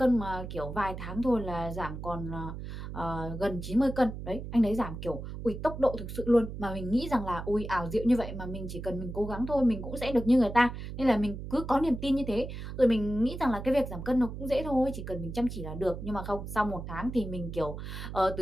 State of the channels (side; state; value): right; noise; hum, 8 dB below the sound